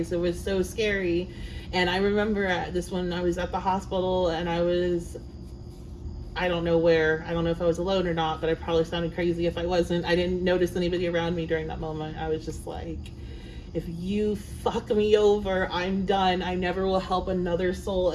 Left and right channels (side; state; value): both; identical; correlation 1.00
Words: It was so scary. And I remember at this one, I was at the hospital, and I don't know where. I don't know if I was alone or not, but I probably sounded crazy if I wasn't. I didn't notice anybody around me during that moment. I was just like, if you fuck me over, I'm done. I never will help another soul